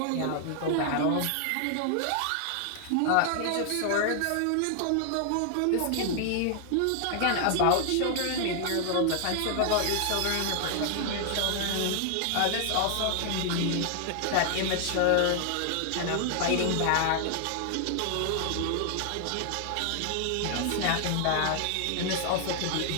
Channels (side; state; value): both; different; correlation 0.00